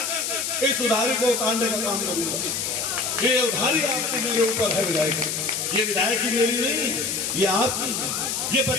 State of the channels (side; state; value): left; noise; hiss, 2 dB below the sound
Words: इस उधारी को उतारने का काम करूंगा। ये उधारी आपकी मेरे ऊपर है विधायक, ये विधायक की मेरी नहीं, ये आपकी है, ये